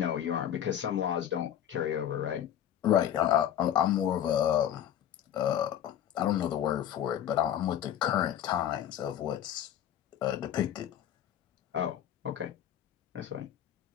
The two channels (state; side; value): quieter; right; 10.4 dB